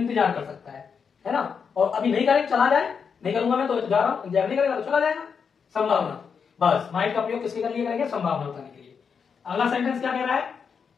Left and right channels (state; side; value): quieter; right; 6.3 dB